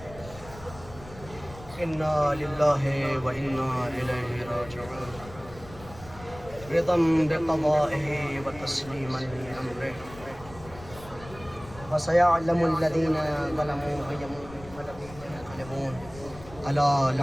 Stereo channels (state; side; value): noise; left; rumble, 17 dB below the sound